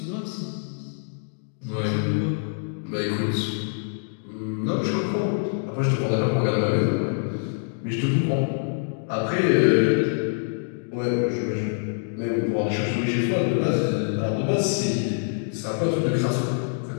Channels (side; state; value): right; silent; digital silence